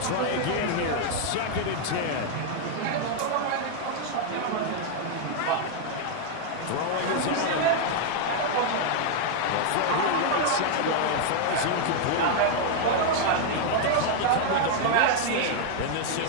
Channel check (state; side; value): different; both; correlation 0.00